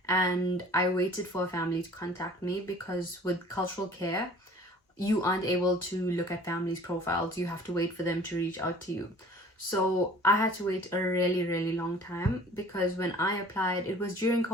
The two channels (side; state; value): both; normal; correlation 0.49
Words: and I waited for a family to contact me because with Cultural Care, you aren't able to look at families' profiles. You have to wait for them to reach out to you. So I had to wait a really long time because when I applied, it was during